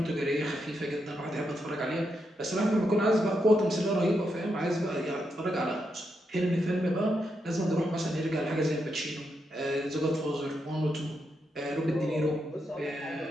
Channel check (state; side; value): normal; both; correlation 0.83